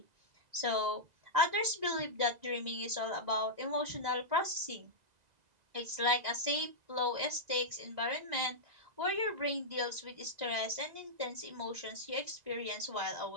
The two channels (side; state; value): left; late; 2.0 ms